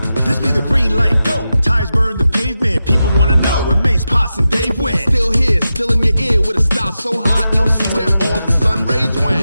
This be the green light, go. Tires burn the pavement. People want to know where Mace, Potts, and Dave went. Still here, still in your ear with a style so hot, you'll see where all the sun rays went.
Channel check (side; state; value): both; inverted; correlation -0.90